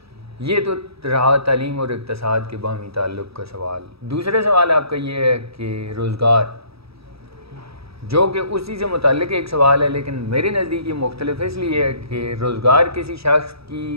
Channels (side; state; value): left; late; 0.77 ms